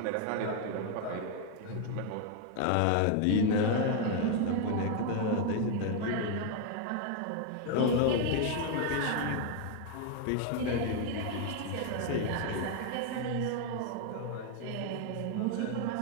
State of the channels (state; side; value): different; both; correlation 0.00